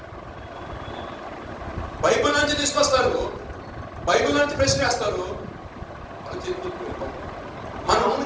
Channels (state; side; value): identical; both; correlation 1.00